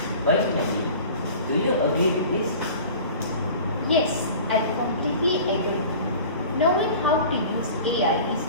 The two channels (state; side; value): inverted; both; correlation -0.41